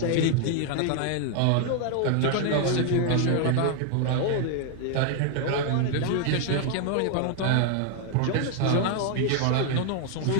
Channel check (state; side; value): different; both; correlation 0.00